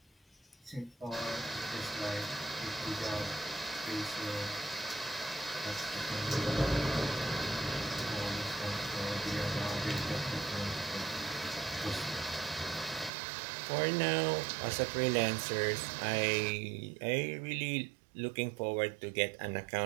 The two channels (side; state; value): left; drops out; at 13.1 s